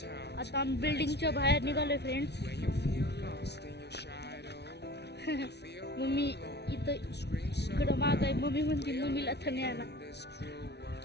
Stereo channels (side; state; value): right; late; 0.49 ms